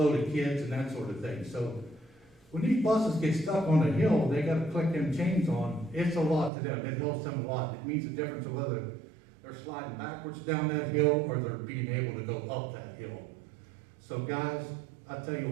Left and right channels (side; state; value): left; drops out; at 6.5 s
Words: of kids and that sort of thing. So, when these buses get stuck on a hill, they gotta click them chains on. It's a lot to them. It helps them a lot. It means the difference of whether they're sliding backwards down that hill or they're being able to go up that hill. So guys, I tell you